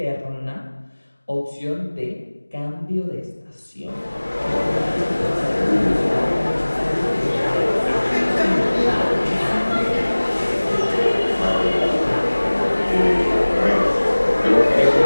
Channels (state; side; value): inverted; both; correlation -1.00